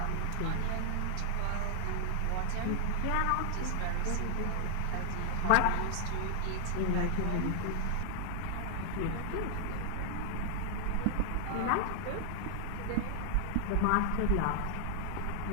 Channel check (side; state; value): both; different; correlation 0.00